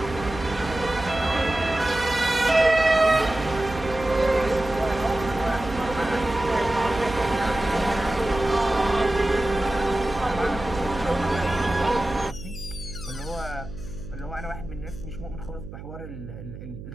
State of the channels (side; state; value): right; noise; hum, 12 dB below the sound